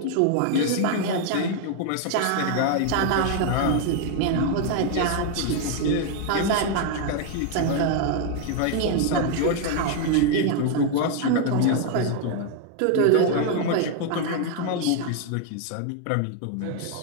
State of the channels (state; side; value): different; both; correlation 0.00